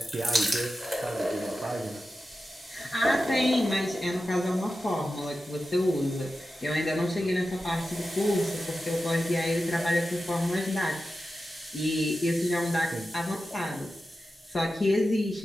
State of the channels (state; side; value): normal; both; correlation 0.92